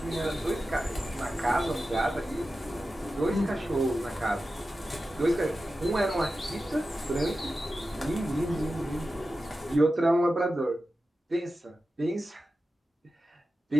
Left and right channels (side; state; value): both; normal; correlation 0.93